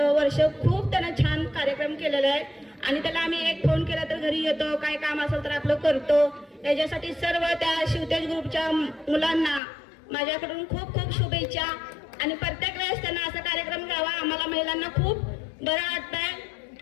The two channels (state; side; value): drops out; right; at 9.6 s